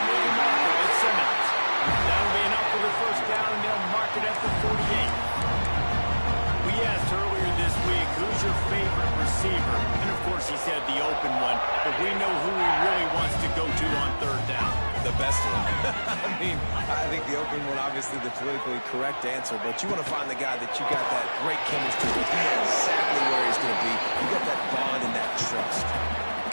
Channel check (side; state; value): both; inverted; correlation -1.00